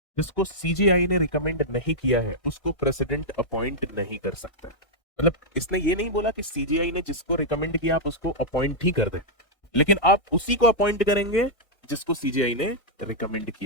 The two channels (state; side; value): late; right; 1.6 ms